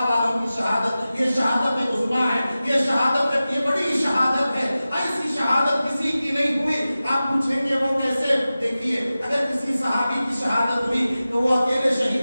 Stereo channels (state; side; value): inverted; both; correlation -0.95